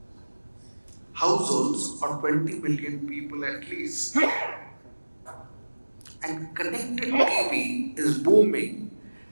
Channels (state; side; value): inverted; both; correlation -1.00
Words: households or 20 million people at least. And connected TV is booming,